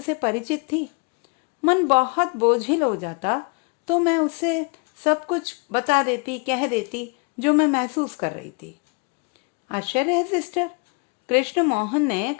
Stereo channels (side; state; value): right; quieter; 33.3 dB